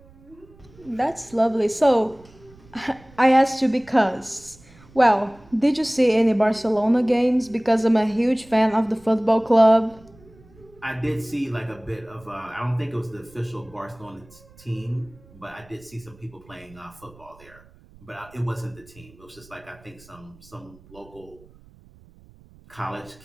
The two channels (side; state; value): right; noise; rumble, 25 dB below the sound